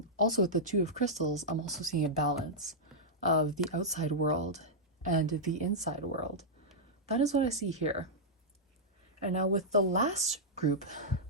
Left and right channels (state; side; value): normal; both; correlation -0.09